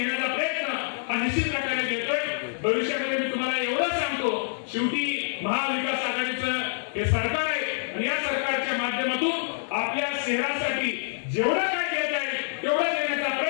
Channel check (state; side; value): silent; right; digital silence